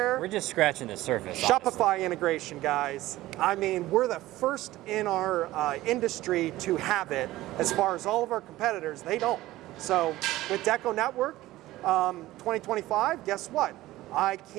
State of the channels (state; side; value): quieter; left; 16.6 dB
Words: scratching the surface. Shopify honestly. integration, guys. I mean, we're the first in our industry to have it. As far as all of our competitors, they don't. So with DecoNetwork 2025, guess what? I